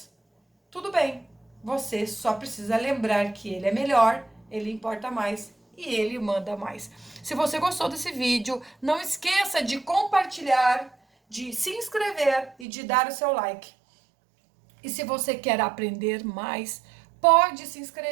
tudo bem. Você só precisa lembrar que ele é melhor, ele importa mais e ele manda mais. Se você gostou desse vídeo, não esqueça de compartilhar, de se inscrever e de dar o seu like. E se você quer aprender mais, pode se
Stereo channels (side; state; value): left; drops out; at 12.7 s